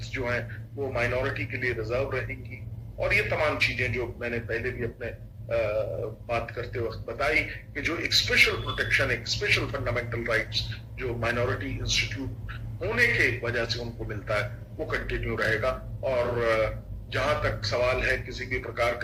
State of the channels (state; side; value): identical; both; correlation 1.00